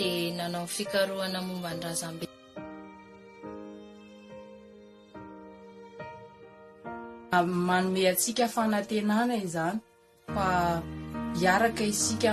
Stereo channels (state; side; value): identical; both; correlation 1.00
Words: nanao fikarohana momba ny razambe. Manome antsika fanantenana izany fa hiaraka isika